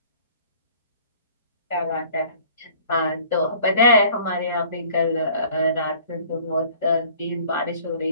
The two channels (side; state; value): both; inverted; correlation -0.53